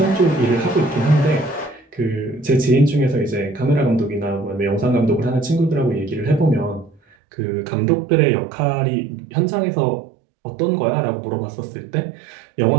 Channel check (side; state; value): left; drops out; at 7.0 s